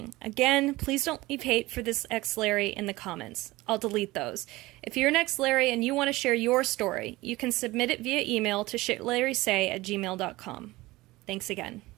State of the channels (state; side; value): quieter; left; 19.7 dB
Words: Again, please don't leave hate for this ex-Larry in the comments. I'll delete those. If you're an ex-Larry and you want to share your story, you can submit it via email to shitlarrysay@gmail.com. Thanks again.